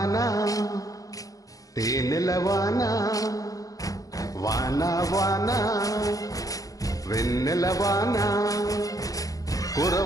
తేనెల వాన వాన వాన వెన్నెల వాన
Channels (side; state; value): right; late; 0.17 ms